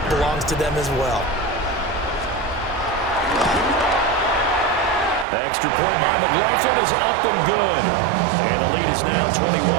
belongs to them as well. Extra point by McLaughlin is up and good. And the lead is now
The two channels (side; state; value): left; drops out; at 5.2 s